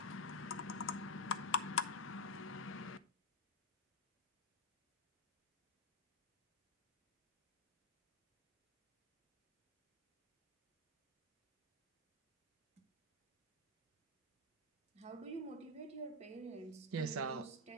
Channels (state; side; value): normal; both; correlation -0.01